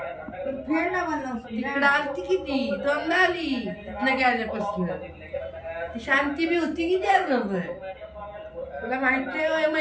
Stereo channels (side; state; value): both; identical; correlation 1.00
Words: फेड ना मला तिकडे आलती किती दोनदा आली इथनं गेल्यापासून ती शांती बी होती की त्यासोबत तुला माहित नाही